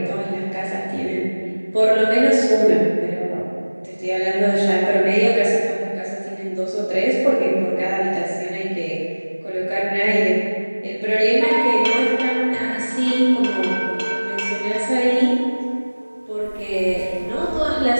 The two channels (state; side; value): inverted; both; correlation -1.00